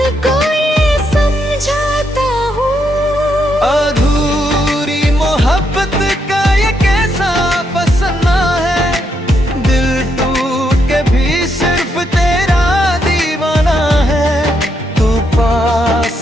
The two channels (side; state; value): both; normal; correlation 0.78